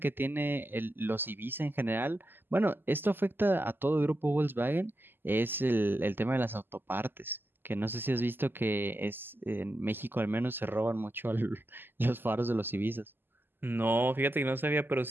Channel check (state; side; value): late; left; 0.096 ms